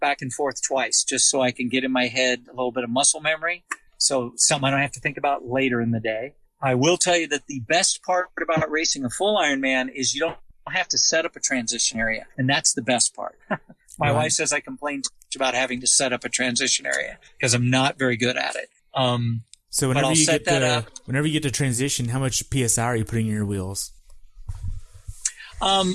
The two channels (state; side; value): identical; both; correlation 1.00